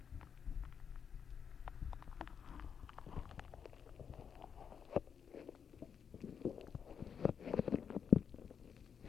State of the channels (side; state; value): right; quieter; 7.1 dB